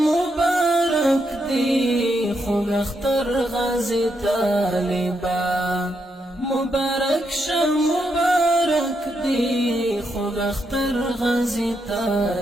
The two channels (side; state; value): both; normal; correlation 0.80